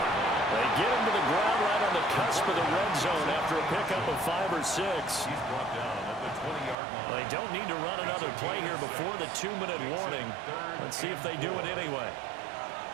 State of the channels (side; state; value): left; drops out; at 6.8 s